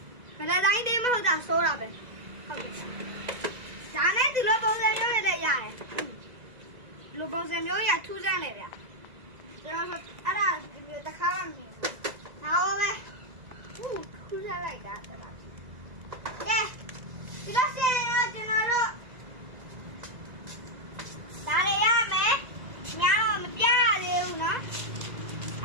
ဗလာတိုင်းသေးမဟုတ်တာစိုးတာပဲဟုတ်တယ်ဒါနဲ့ဒီလိုပုံစံမျိုးတွေလည်းရတယ်ဒီလိုပုံစံမျိုးရထူးဆန်းလေဗျကျွန်တော်အဲ့ဒါတခါမှမမြင်ဘူးဒါပါပဲထူးဆန်းလိုက်တာတော်တော်ကဲဒီလိုစင်ရောကျွန်တော်တို့ဒါတွေရမယ်များတော့မပြရသေးဘူးနော်ဒ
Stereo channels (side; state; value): left; late; 2.0 ms